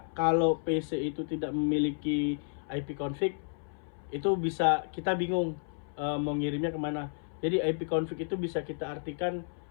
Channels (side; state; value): right; silent; 57 dB below the other